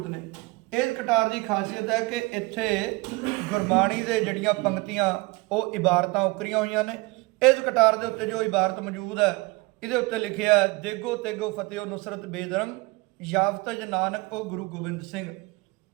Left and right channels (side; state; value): left; quieter; 24.6 dB